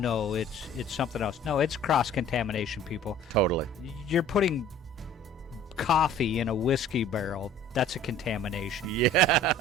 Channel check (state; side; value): normal; both; correlation 0.48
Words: it's something else. No, it's cross-contamination, people. Totally. You're putting coffee in a whiskey barrel. That's a contamination.